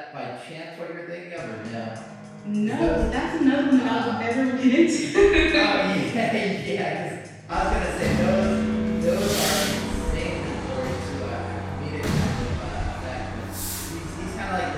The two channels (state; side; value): identical; both; correlation 1.00